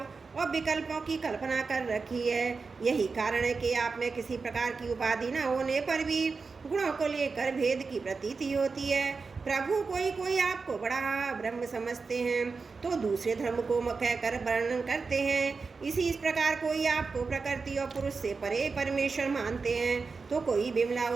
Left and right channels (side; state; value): left; quieter; 4.6 dB